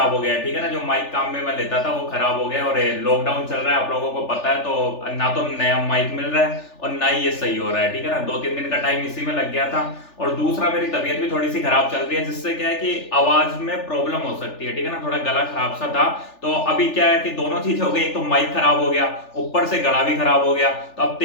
हो गया है, ठीक है ना। जो माइक काम में मैं लेता था वो खराब हो गया, और लॉकडाउन चल रहा है आप लोगों को पता है, तो ना तो नया माइक मिल रहा है और ना ही ये सही हो रहा है, ठीक है ना। 2-3 दिन का टाइम इसी में लग गया था। और दूसरा, मेरी तबीयत भी थोड़ी सी खराब चल रही है, जिससे क्या है कि आवाज में प्रॉब्लम हो सकती है, ठीक है ना। थोड़ा गला खराब सा था, तो अभी क्या है कि दोनों चीज हो गई। एक तो माइक खराब हो गया, ऊपर से गला भी खराब हो गया। तो अब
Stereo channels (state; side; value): late; right; 3.4 ms